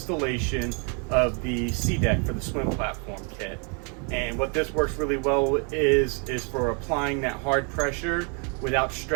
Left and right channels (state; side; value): quieter; left; 37.2 dB